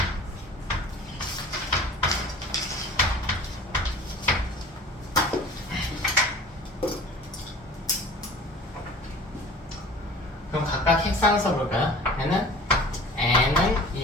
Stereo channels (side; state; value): both; normal; correlation 0.43